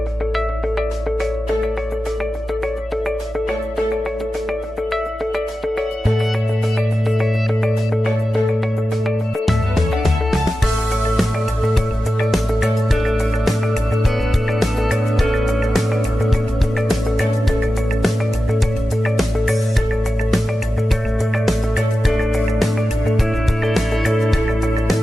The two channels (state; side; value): normal; both; correlation 0.92